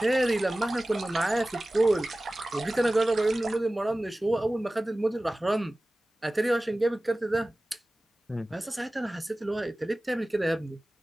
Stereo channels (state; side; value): normal; both; correlation 0.97